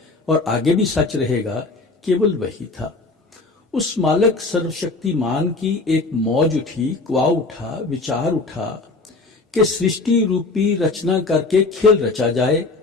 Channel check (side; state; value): right; quieter; 3.5 dB